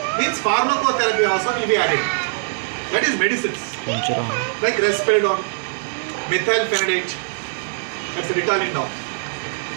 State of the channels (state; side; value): silent; left; 65 dB below the other